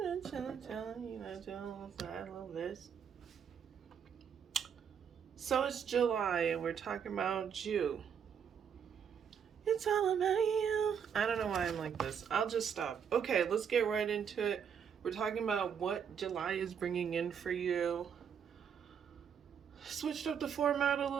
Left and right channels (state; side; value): quieter; left; 7.6 dB